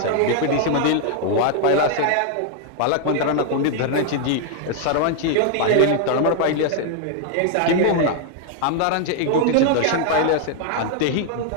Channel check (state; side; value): different; both; correlation 0.00